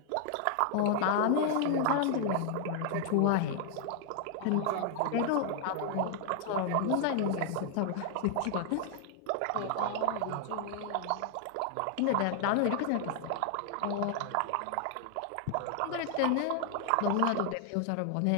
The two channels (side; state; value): both; different; correlation 0.00